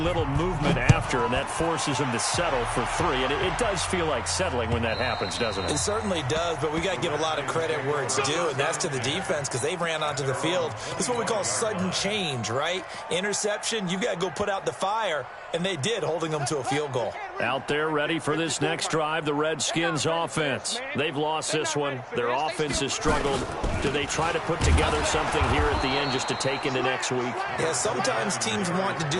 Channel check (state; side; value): identical; both; correlation 1.00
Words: movement after, and that forces them to settle for 3. And it does feel like settling when that happens, doesn't it? It certainly does, but we got to give a lot of credit where it's due, and that's to the defense because they ran onto the field. This is what we call sudden change, right? Interception, you got to go put out the fire, and they did, holding them to a field goal. Out there ready for this next drive, the Redskins offense. They've lost this one. Their offense has struggled. Do they try to put together something here at the end just to take into next week? Yes, sometimes teams want to